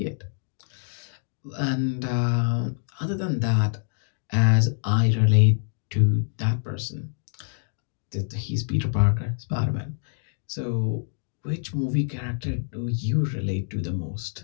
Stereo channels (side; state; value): right; silent; digital silence